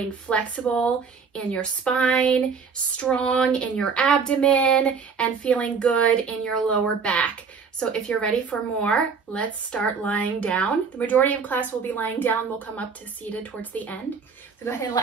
flexible in your spine, strong in your abdomen, and feeling good in your lower back. So if you're ready for more, let's start lying down. The majority of class will be lying down. We'll come up to seated towards the end. So go ahead and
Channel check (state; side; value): quieter; left; 5.6 dB